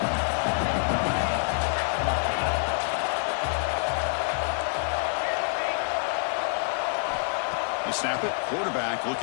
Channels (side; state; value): right; silent; 60 dB below the other